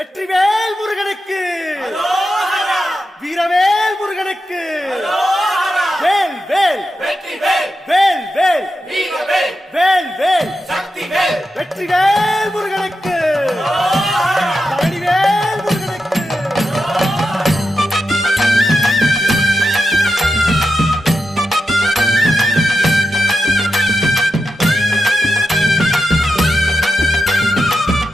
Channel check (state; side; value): normal; both; correlation 0.89